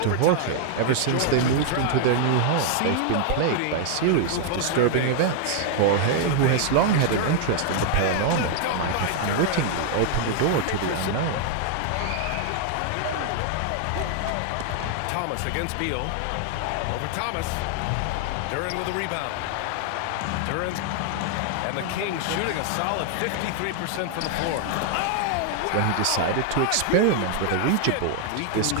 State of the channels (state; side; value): different; both; correlation 0.00